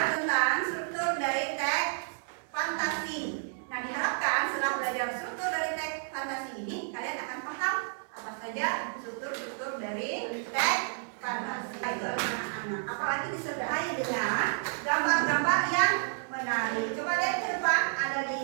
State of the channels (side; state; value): left; silent; digital silence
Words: tentang struktur dari teks fantasi. Nah, diharapkan setelah belajar struktur dari teks fantasi ini, kalian akan paham apa saja struktur dari teks fantasi itu anak-anak. Apalagi disertai dengan gambar-gambar yang menarik. Coba lihat ke depan, ada